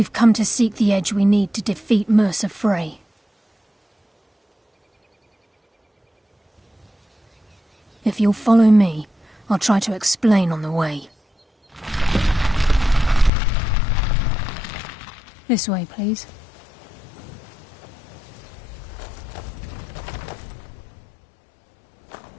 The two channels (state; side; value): drops out; right; at 13.3 s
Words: come to seek the edge we need to defeat Mercer Frey. If you'll follow me, I'll try to explain on the way. This way, please.